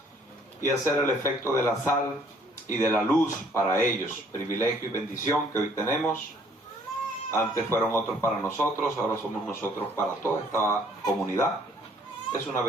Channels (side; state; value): both; normal; correlation 0.61